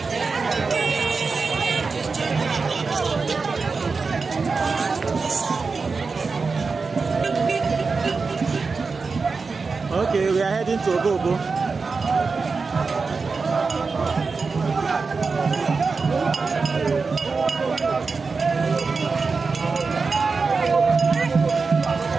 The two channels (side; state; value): left; quieter; 4.5 dB